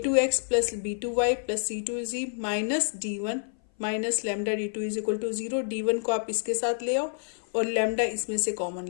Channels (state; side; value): silent; right; 57 dB below the other